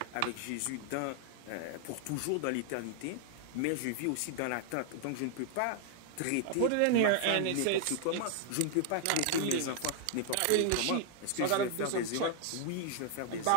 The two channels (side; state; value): both; different; correlation 0.00